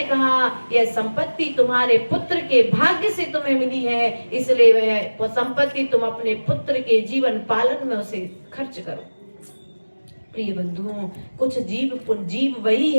कहा यह संपत्ति तुम्हारे पुत्र के भाग्य से तुम्हें मिली है, इसलिए वह संपत्ति तुम अपने पुत्र के जीवन पालन में उसे खर्च करो। प्रिय बंधुओं, कुछ जीव वही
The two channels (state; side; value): inverted; both; correlation -1.00